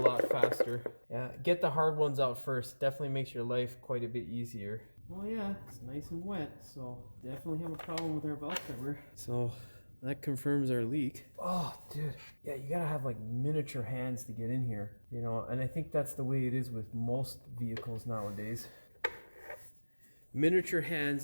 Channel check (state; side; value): inverted; both; correlation -1.00